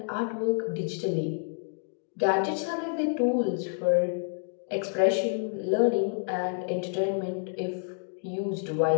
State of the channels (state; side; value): silent; right; digital silence